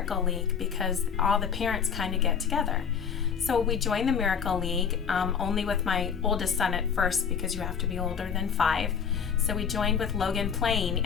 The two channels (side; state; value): right; quieter; 7.2 dB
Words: League? Because all the parents kind of get together. So we joined the Miracle League, only with my oldest son at first because you have to be older than 5. So we joined with Logan playing,